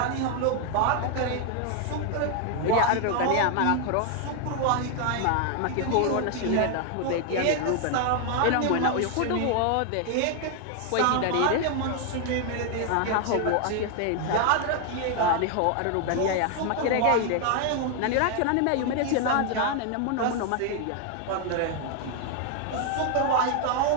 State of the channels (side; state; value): both; different; correlation 0.00